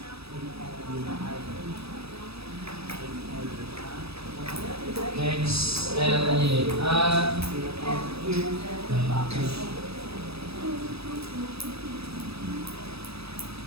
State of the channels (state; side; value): late; left; 0.78 ms